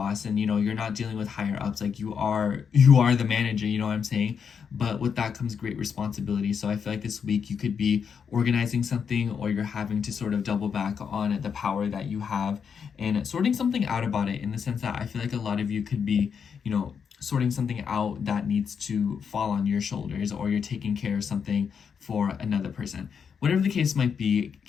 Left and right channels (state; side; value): quieter; right; 6.7 dB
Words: and, you know, you're not dealing with higher ups. Like you are the manager, you know what I'm saying? But with that comes great responsibility. So I feel like this week you could be organizing something, or you're having to sort of double back on the power that you have and sorting something out about it, in the sense that I feel like a lot of you could be, you know, sorting something out that needs to fall on your shoulders, or you're taking care of something for another person. Whatever the case might be,